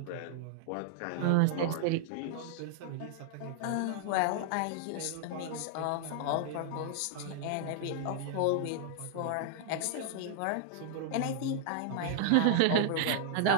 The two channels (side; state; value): both; different; correlation -0.01